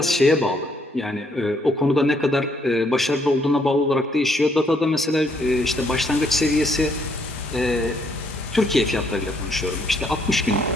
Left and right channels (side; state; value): both; normal; correlation 0.70